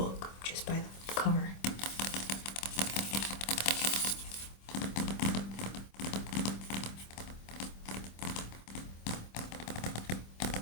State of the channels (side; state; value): right; late; 26 ms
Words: just by the cover.